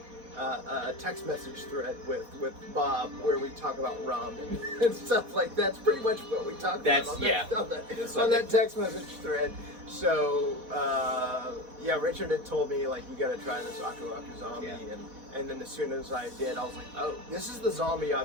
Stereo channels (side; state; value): left; late; 4.2 ms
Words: text message thread with Bob where we talk about rum and stuff like that. That's pretty much what we talked about on that text message thread. So yeah, Richard had told me like, you got to try this Aku Aku zombie, and then as soon as I did, I was like, oh, this is the zombie